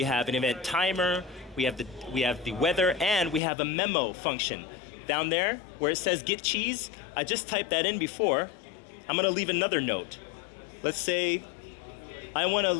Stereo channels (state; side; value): drops out; right; at 3.4 s